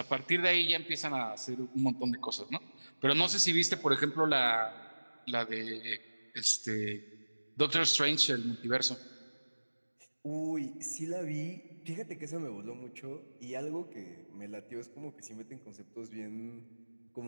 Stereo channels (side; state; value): both; inverted; correlation -1.00